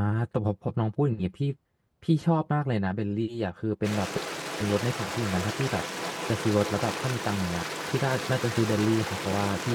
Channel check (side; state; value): both; identical; correlation 1.00